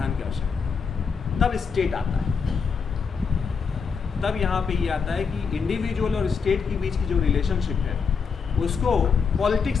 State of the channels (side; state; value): right; quieter; 5.8 dB